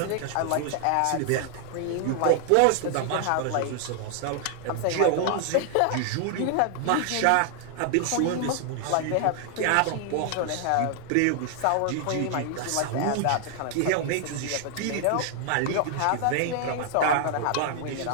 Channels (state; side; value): different; both; correlation 0.00